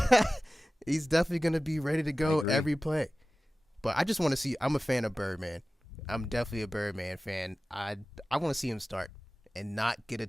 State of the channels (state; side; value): normal; both; correlation 0.96